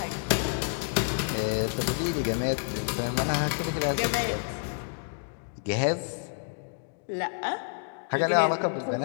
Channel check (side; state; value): right; silent; digital silence